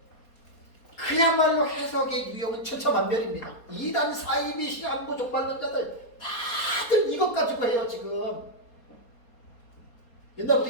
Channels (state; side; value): late; right; 4.2 ms